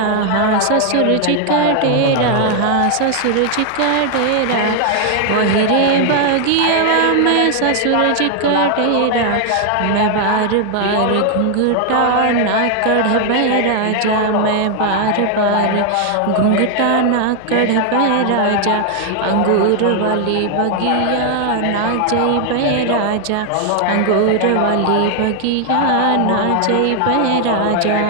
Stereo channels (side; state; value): both; different; correlation 0.00